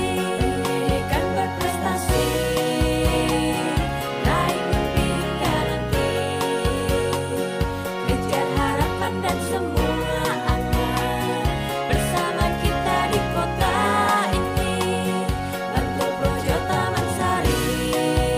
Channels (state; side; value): identical; both; correlation 1.00